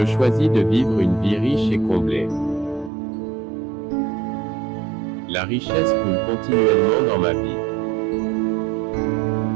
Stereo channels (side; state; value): left; drops out; at 2.9 s